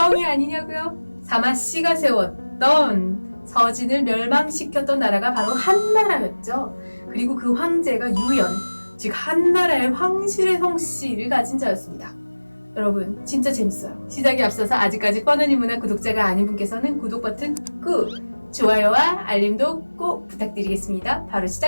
아니냐고요? 사마씨가 세웠던 서진을 멸망시켰던 나라가 바로 한나라였죠. 그리고 그 황제가 유연, 즉 한나라의 황실의 성씨를 가진 자였습니다. 여러분 진짜 재밌어요. 시작에 앞서서 아직까지 뻔한 인문학 구독자가 아닌 분께서는 구독 버튼 꾹, 좋아요와 알림도 꼭 부탁드리겠습니다. 바로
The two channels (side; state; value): both; inverted; correlation -1.00